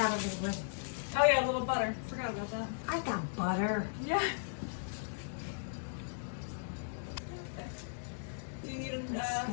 a little bit? Oh yeah, a little butter. Forgot about that. I got butter. Yeah. Do you need an,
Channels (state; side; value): silent; right; digital silence